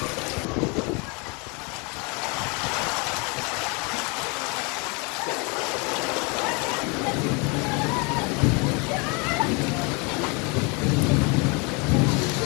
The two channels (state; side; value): quieter; right; 30.6 dB